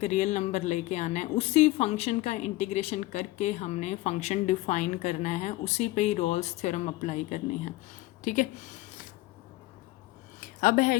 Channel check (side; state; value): right; quieter; 18.5 dB